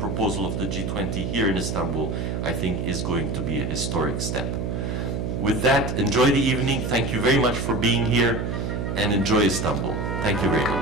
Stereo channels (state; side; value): noise; right; hum, 2 dB below the sound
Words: of the G20 here in Istanbul, I think is going to be a historic step. With that, enjoy the evening. Thank you very much for being here, and enjoy Istanbul. Thank you very